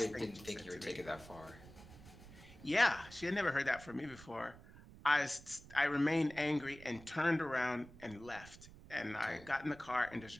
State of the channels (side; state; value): right; noise; rumble, 18 dB below the sound